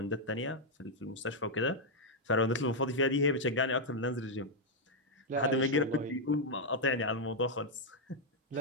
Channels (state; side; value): normal; both; correlation -0.02